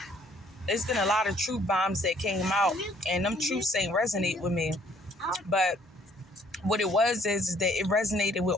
there's been a lot of truth bombs that came out, and them truths ain't resonate with me. But what it was is that it resonated with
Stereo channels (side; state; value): both; normal; correlation 0.62